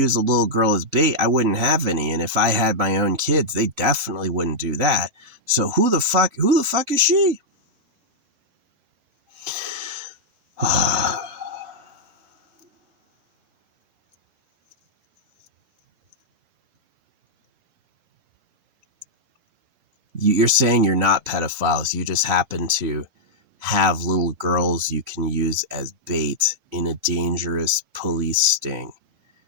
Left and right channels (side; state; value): left; late; 3.5 ms